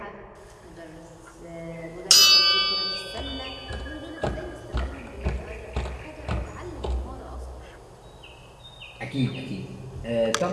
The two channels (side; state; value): both; identical; correlation 1.00